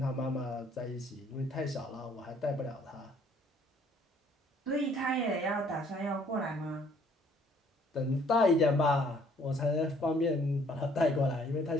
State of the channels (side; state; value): both; normal; correlation 0.61